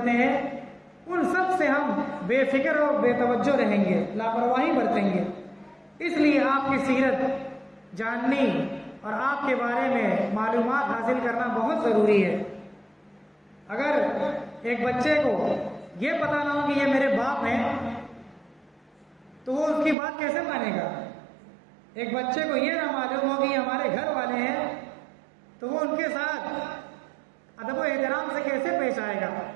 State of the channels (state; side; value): drops out; left; at 20.0 s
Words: ہیں، ان سب سے ہم بے فکر اور بے توجہ رہیں گے، لاپرواہی برتیں گے۔ اس لیے آپ کی سیرت جاننی اور آپ کے بارے میں معلومات حاصل کرنا بہت ضروری ہے۔ اگر ایک بچے کو یہ پتہ نہ ہو کہ یہ میرے باپ ہیں تو وہ اس کی بات کیسے مانے گا؟ ایک بچے کو یہ نہ معلوم ہو کہ یہ ہمارے گھر والے ہیں تو وہ ان کے ساتھ ادب و احترام سے کیسے پیش آئے گا؟